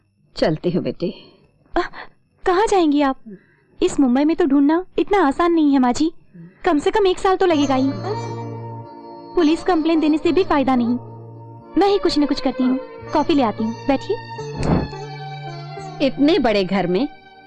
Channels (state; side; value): identical; both; correlation 1.00